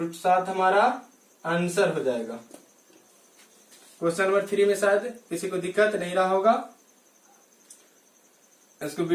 हमारा आंसर हो जाएगा। क्वेश्चन नंबर 3 में शायद किसी को दिक्कत नहीं रहा होगा, इसको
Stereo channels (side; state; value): both; identical; correlation 1.00